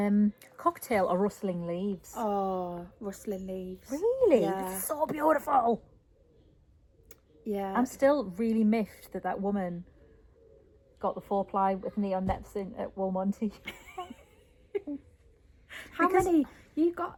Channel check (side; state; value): both; identical; correlation 1.00